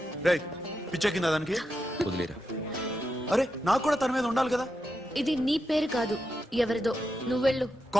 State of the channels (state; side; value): normal; both; correlation 0.86